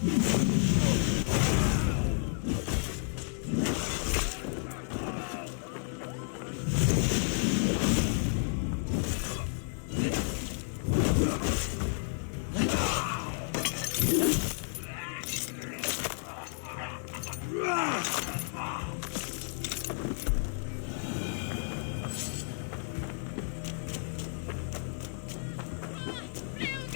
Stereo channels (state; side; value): silent; right; 57 dB below the other